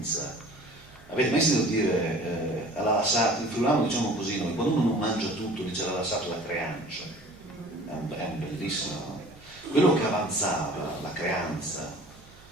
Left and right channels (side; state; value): right; noise; hum, 24 dB below the sound